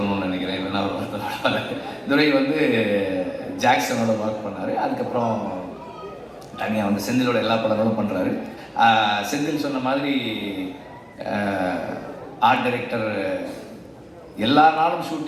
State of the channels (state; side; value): identical; both; correlation 1.00